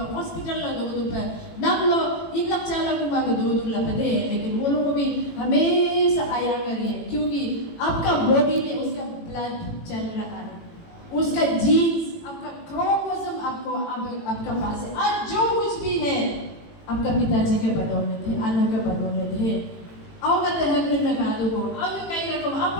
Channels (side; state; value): right; late; 18 ms